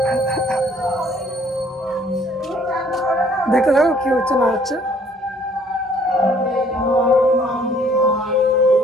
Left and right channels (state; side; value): normal; both; correlation 0.60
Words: দেখতে থাকো কি হচ্ছে না হচ্ছে।